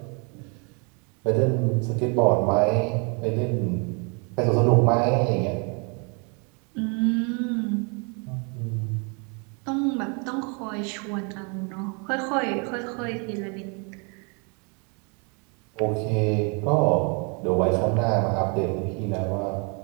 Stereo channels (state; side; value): quieter; left; 35.0 dB